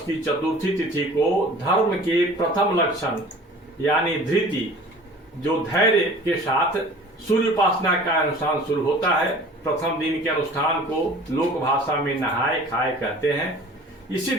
की चतुर्थी तिथि को धर्म के प्रथम लक्षण यानी धृति, जो धैर्य के साथ सूर्य उपासना का अनुष्ठान शुरू होता है। प्रथम दिन के अनुष्ठान को लोक भाषा में नहाए खाए कहते हैं। इसी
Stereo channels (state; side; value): normal; both; correlation 0.45